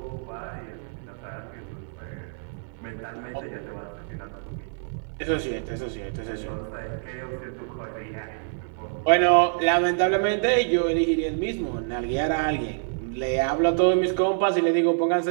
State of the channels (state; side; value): silent; left; 60 dB below the other